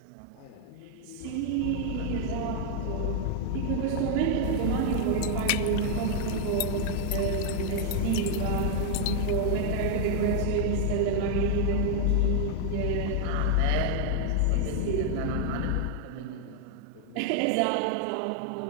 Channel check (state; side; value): different; both; correlation 0.00